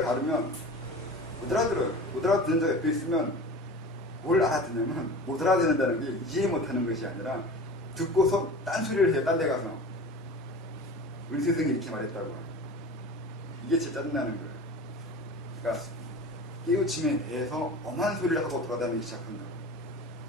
다르면 못 알아들어요. 못 알아듣는 자 옆에 있으면 뭘 알아듣냐면 못 알아듣는다는 게 이해 못하는 것이 아니라 듣고서 딴소리를 해요. 딴 데 가서 우리 스승이 이렇게 말했다고. 이게 진짜 짜증나는 거예요. 그러니까 깨우침에 대해서 엄한 소리를 하고 돌아다니기 시작한다.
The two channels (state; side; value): normal; both; correlation 0.35